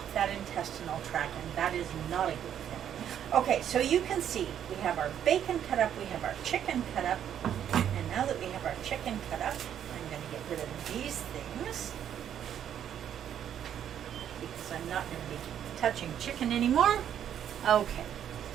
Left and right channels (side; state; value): left; quieter; 9.7 dB